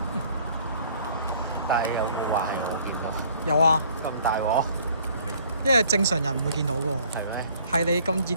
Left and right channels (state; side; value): inverted; both; correlation -0.57